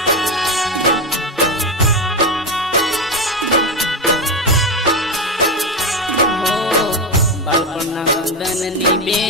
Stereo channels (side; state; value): both; normal; correlation 0.15